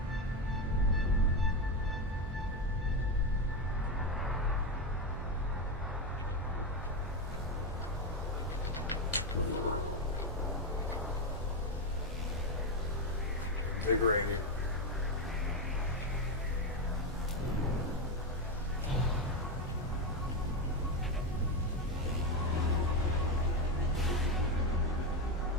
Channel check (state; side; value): normal; both; correlation 0.10